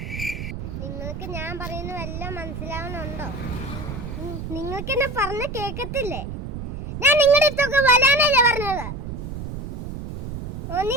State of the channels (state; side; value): noise; right; rumble, 7 dB below the sound